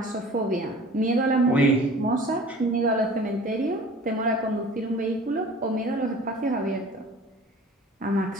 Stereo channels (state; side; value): normal; both; correlation 0.44